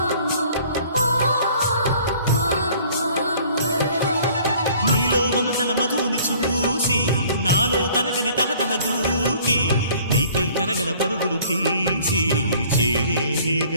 నీలో మమతల మధుని చూసి నాలో తరగని తహతహ దూకి నీకై తరగల పరుగులు తీసి చేరే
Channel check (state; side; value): inverted; both; correlation -0.54